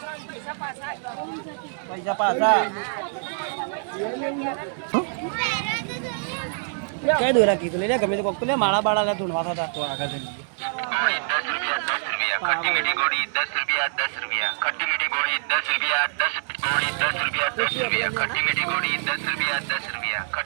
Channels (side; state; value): left; silent; digital silence